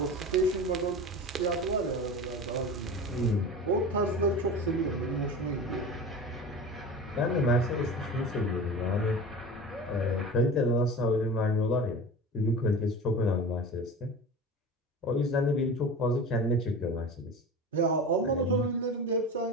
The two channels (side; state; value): both; normal; correlation 0.32